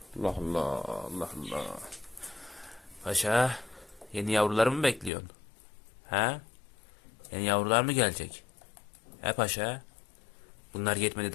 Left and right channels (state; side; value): drops out; right; at 5.1 s